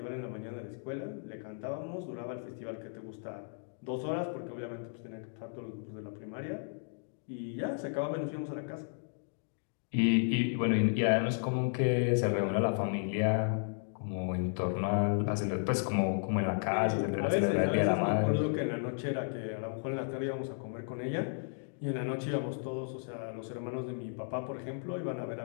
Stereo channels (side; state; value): right; silent; digital silence